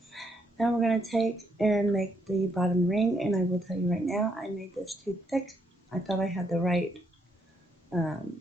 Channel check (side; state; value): both; normal; correlation 0.75